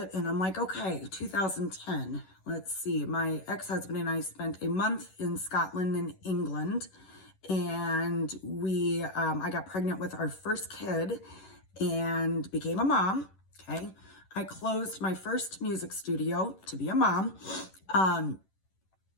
and I'm like, okay, 2010, let's see. My ex-husband and I spent a month in Scotland and England, and I got pregnant with our first kid and became a mom. Okay. I closed my first music studio to be a mom.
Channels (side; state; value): right; late; 11 ms